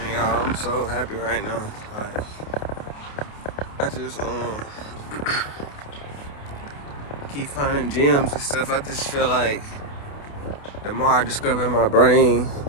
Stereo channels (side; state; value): right; late; 28 ms